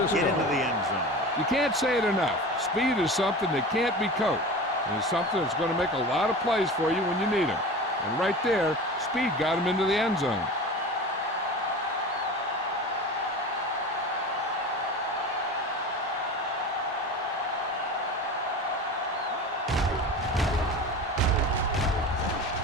into the end zone. You can't say it enough. Speed is something that can't be coached. And it's something that's going to make a lot of plays for you when you need them. And right there, speed got him into the end zone.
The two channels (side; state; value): both; normal; correlation 0.33